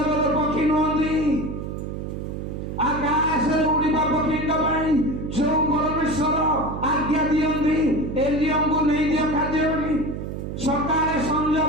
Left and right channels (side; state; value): right; noise; hum, 6 dB below the sound